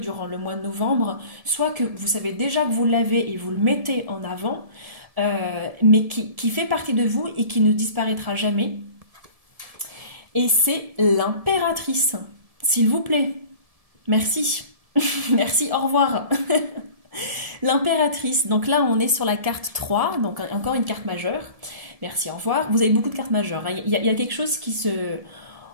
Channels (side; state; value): left; late; 1.7 ms